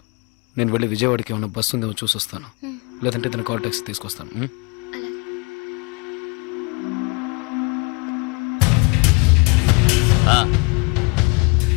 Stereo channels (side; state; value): right; quieter; 30.7 dB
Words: నేను వెళ్ళి విజయవాడకి ఏమైనా బస్సు ఉందేమో చూసి వస్తాను. లేదంటే తన కాల్ టాక్సీ తీసుకొస్తాను. ఆ.